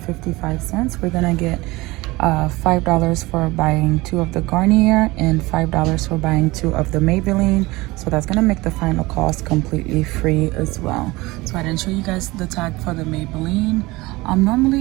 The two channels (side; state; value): left; quieter; 21.2 dB